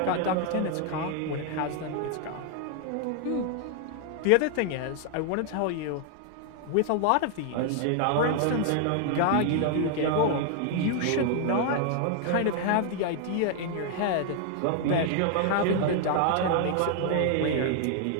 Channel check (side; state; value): both; different; correlation 0.00